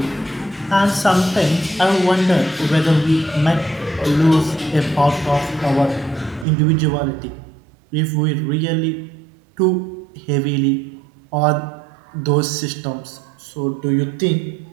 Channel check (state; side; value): drops out; left; at 6.5 s